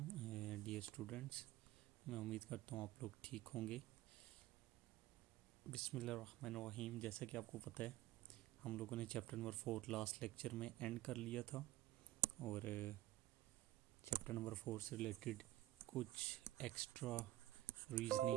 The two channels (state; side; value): quieter; left; 15.5 dB